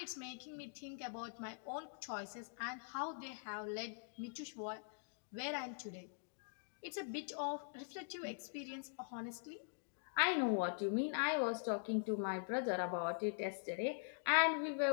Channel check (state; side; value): silent; right; digital silence